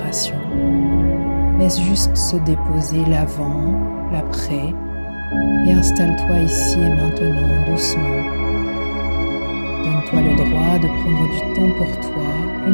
Laisse juste se déposer l'avant, l'après, et installe-toi ici et maintenant doucement. Donne-toi le droit de prendre du temps pour toi,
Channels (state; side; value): inverted; both; correlation -1.00